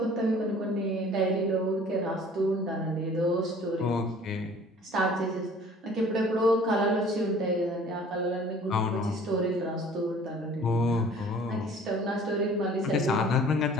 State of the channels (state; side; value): normal; both; correlation 0.50